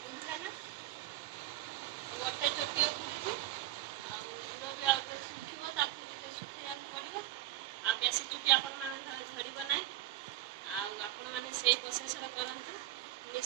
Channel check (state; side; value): quieter; left; 14.9 dB